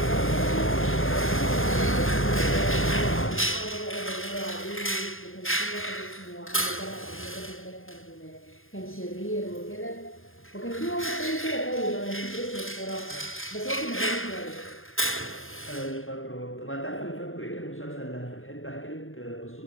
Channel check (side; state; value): right; late; 0.59 ms